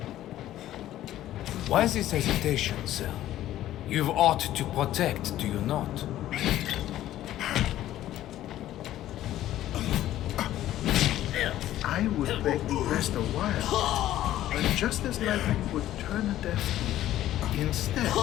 Why this hesitation, sir? You've aught to protect, do you not? I would beg to rest a while, but just as lightning would turn a deaf ear. Instead,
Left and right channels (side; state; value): right; quieter; 13.4 dB